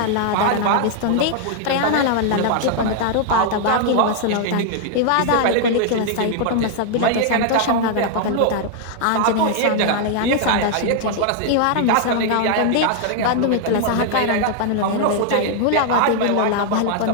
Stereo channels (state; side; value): different; both; correlation 0.00